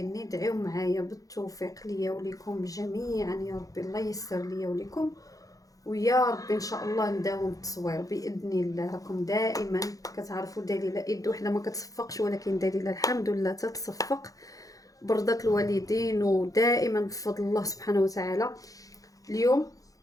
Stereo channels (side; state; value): right; late; 0.17 ms